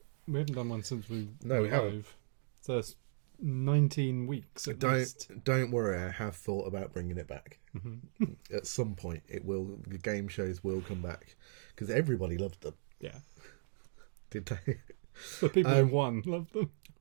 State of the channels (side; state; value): left; silent; digital silence